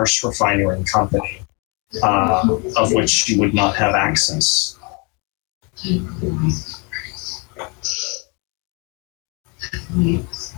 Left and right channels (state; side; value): quieter; right; 32.4 dB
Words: refinery company, of which you would not have access.